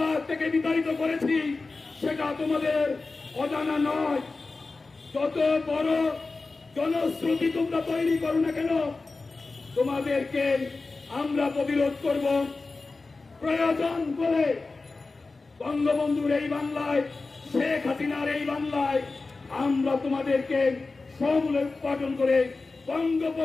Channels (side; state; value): right; quieter; 3.7 dB